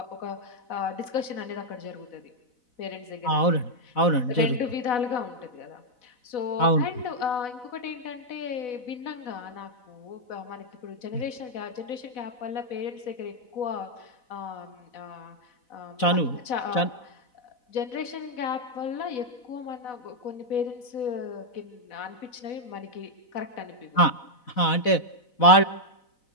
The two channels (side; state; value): right; late; 4.0 ms